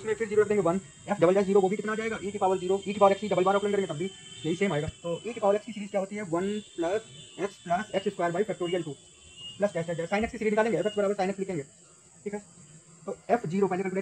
फिर 0 रख देंगे 1, f डबल डैश 0 वो भी कितना आ जाएगा, e की पावर 0, e की पावर x डबल बार ऑपरेंड करेंगे तब भी यही सेम आएगा। तो e की पावर x की सीरीज क्या होती है, 1 plus x square by factorial 2 plus dash dash sign x की सीरीज निकालेंगे, f बराबर साइन x लिखेंगे, ठीक है। तो f0 पहले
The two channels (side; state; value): both; identical; correlation 1.00